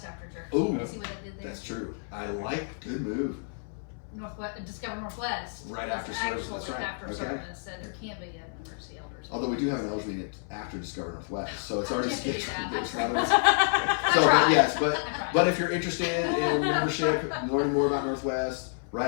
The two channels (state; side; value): silent; right; 59 dB below the other